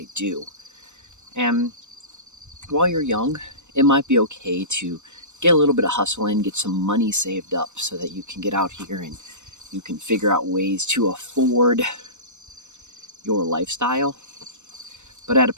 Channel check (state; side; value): late; left; 0.84 ms